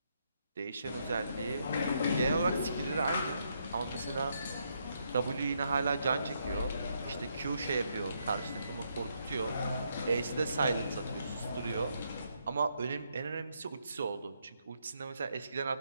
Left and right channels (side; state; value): both; inverted; correlation -0.76